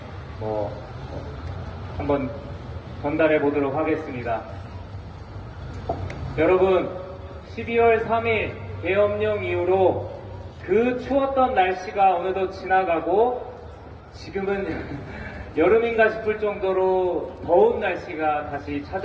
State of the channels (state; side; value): identical; both; correlation 1.00